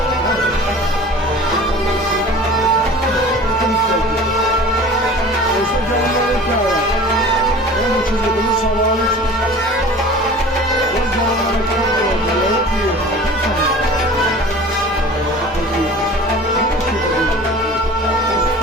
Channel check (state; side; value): normal; both; correlation 0.41